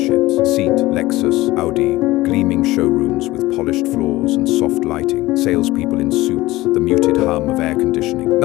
Seat, Lexus, Audi, gleaming showrooms with polished floors and soft lighting, salespeople in suits, the muted hum of air conditioning.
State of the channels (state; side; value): quieter; right; 18.4 dB